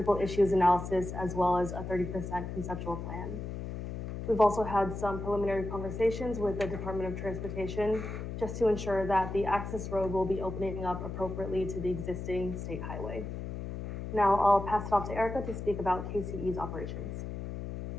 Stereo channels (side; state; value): left; noise; hum, 6 dB below the sound